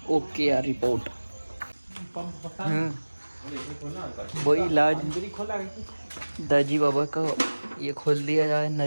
ओके यार रिपोर्ट। वही इलाज दाजी बाबा का ये खोल दिया जाए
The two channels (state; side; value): inverted; both; correlation -1.00